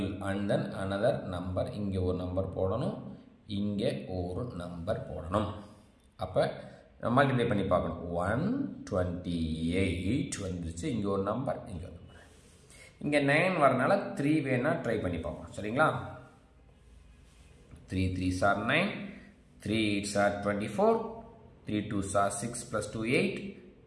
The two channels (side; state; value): both; identical; correlation 1.00